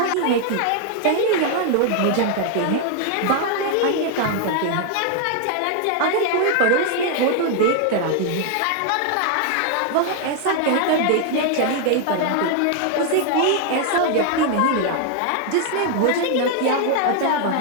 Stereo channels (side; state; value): both; different; correlation 0.00